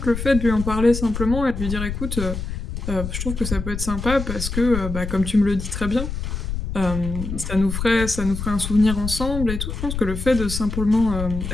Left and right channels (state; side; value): noise; left; rumble, 5 dB below the sound